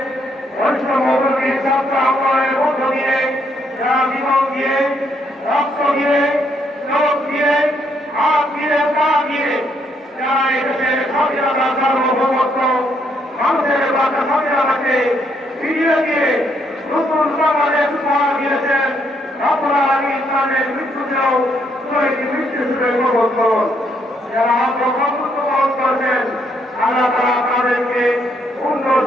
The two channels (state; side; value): normal; both; correlation 0.73